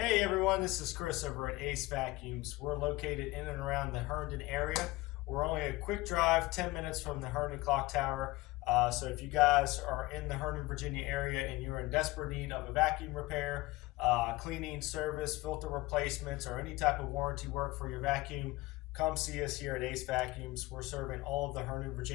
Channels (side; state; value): right; quieter; 20.3 dB